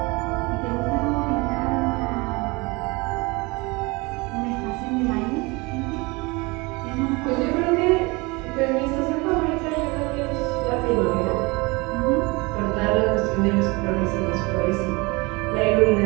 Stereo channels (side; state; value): left; quieter; 25.6 dB